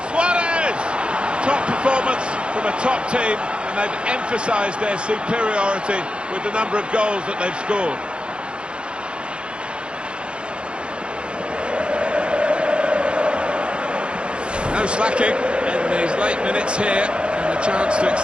Suarez! Top performance from a top team, and and they've emphasised their superiority with the number of goals that they've scored. No slacking in these late minutes here, and a chance to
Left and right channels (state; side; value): late; left; 0.057 ms